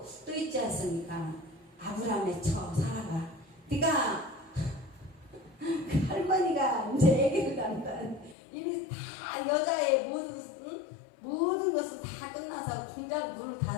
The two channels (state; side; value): drops out; right; at 8.3 s